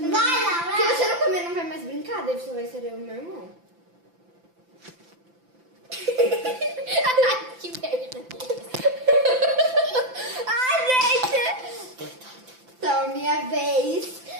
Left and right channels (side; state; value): left; late; 5.9 ms